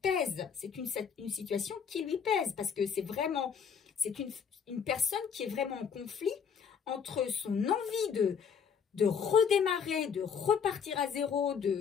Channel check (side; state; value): right; quieter; 6.8 dB